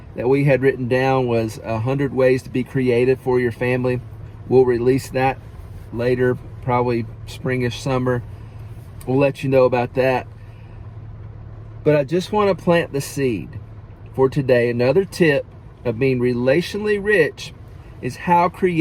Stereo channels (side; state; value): both; identical; correlation 1.00